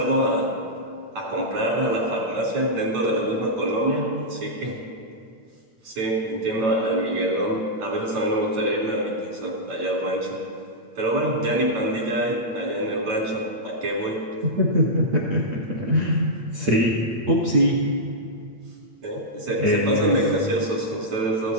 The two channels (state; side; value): late; left; 8.9 ms